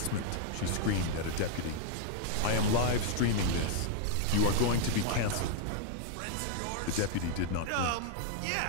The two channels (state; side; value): different; both; correlation -0.01